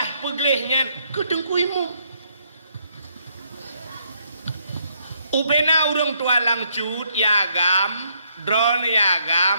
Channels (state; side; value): inverted; both; correlation -0.72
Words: peglehnya ke dengkuimu ubena urang tua langcut yagam drone yagam